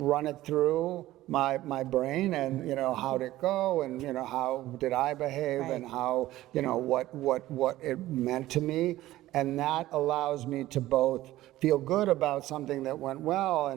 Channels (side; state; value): left; quieter; 15.7 dB